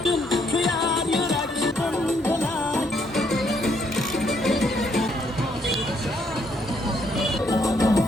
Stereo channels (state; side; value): normal; both; correlation 0.71